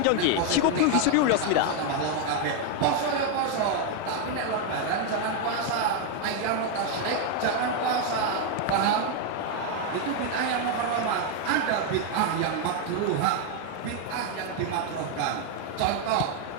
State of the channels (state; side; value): different; both; correlation 0.01